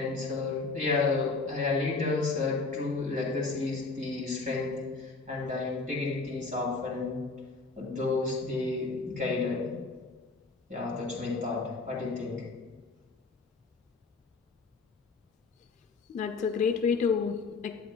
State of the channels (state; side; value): quieter; right; 4.0 dB